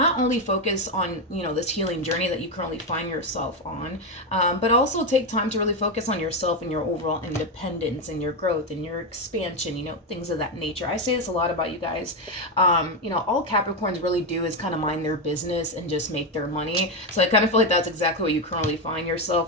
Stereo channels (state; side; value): normal; both; correlation 0.09